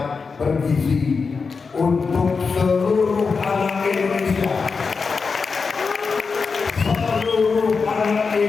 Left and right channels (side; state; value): right; quieter; 4.9 dB